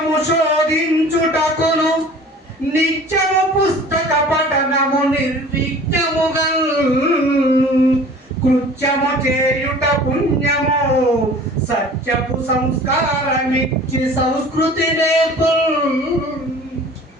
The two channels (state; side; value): normal; both; correlation 0.45